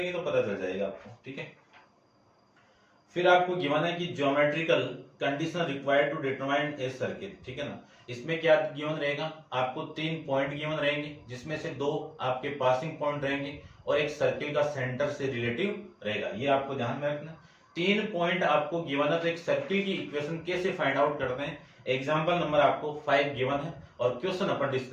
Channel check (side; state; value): both; identical; correlation 1.00